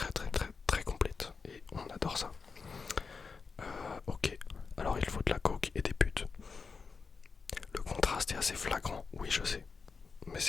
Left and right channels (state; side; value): quieter; right; 5.0 dB